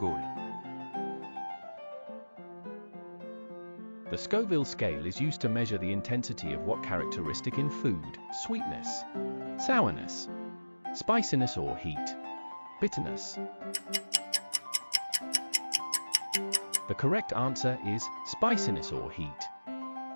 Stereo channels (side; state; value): both; inverted; correlation -1.00